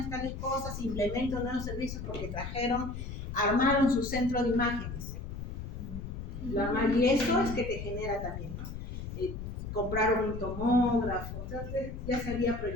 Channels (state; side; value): noise; left; rumble, 7 dB below the sound